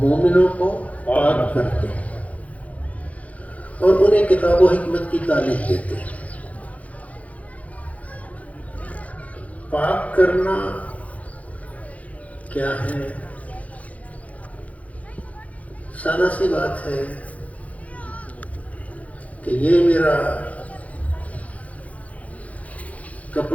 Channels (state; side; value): late; right; 0.068 ms